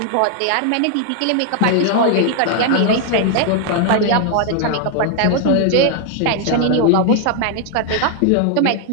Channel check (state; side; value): different; both; correlation 0.00